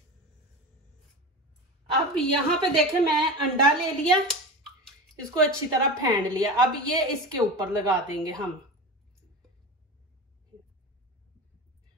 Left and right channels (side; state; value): both; normal; correlation 0.27